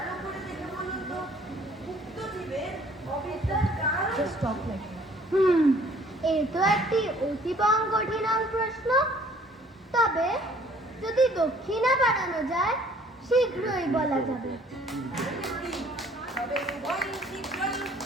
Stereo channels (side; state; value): both; normal; correlation 0.57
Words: এ তো একটি অতীবং কঠিন প্রশ্ন। তবে যদি দক্ষিণা বাড়ানো যায় শীঘ্রই বলা যাবে।